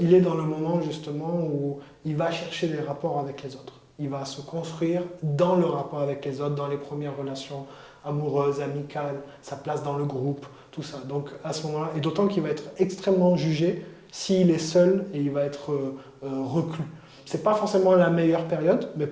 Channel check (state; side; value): identical; both; correlation 1.00